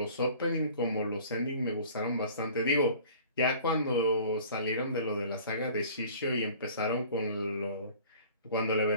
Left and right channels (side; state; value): both; inverted; correlation -0.47